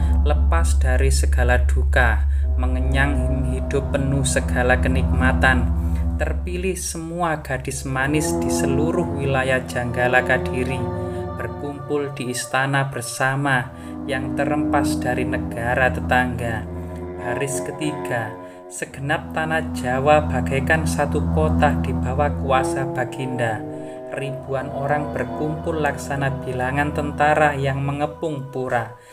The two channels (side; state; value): both; identical; correlation 1.00